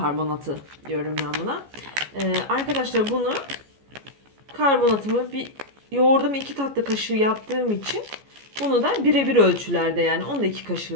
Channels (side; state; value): left; late; 14 ms